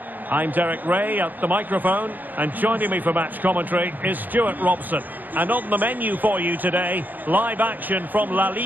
I'm Derek Ray at the microphone, and joining me for match commentary is Stuart Robson. And on the menu for you today, live action from La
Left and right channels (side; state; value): left; late; 0.085 ms